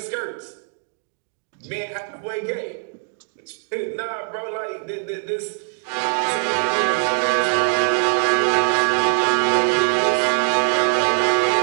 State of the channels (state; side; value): silent; left; digital silence